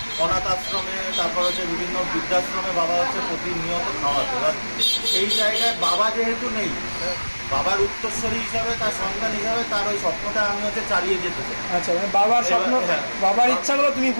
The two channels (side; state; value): both; inverted; correlation -1.00